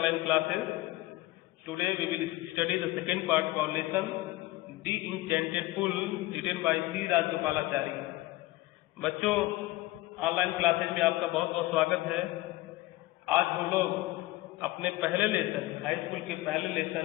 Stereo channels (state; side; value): quieter; right; 18.6 dB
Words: classes. Today we will study the second part of our lesson, The Enchanted Pool, written by C. Rajgopalachari. बच्चों, online classes में आपका बहुत बहुत स्वागत है। आज हम लोग अपने पहले लेसन, हाई स्कूल के पहले